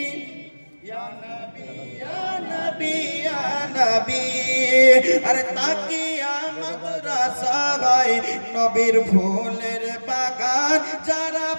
ইয়া নবী ইয়া নবী ইয়া নবী। আরে তাকিয়া মাদ্রাসা হয় নবীর ফুলের বাগান। যারা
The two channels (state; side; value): inverted; both; correlation -1.00